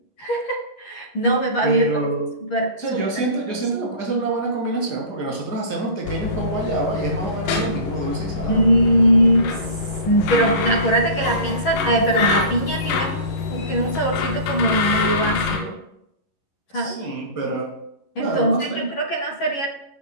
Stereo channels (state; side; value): late; right; 11 ms